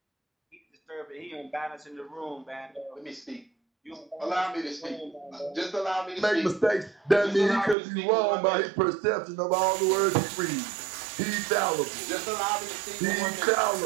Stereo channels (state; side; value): drops out; left; at 7.8 s